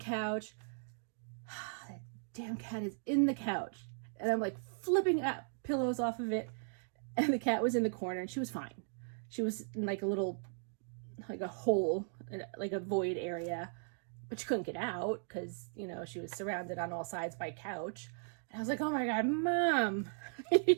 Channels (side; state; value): left; silent; digital silence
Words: That damn cat is in the couch. And I'm like flipping up pillows off of it. And the cat was in the corner and she was fine. She was in like a little, like a hole, like a void area. But she couldn't get out because, you know, she was surrounded on all sides by couch. And I was like, oh my God, Mom,